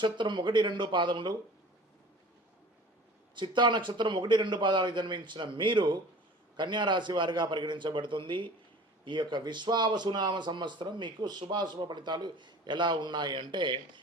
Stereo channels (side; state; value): both; normal; correlation 0.43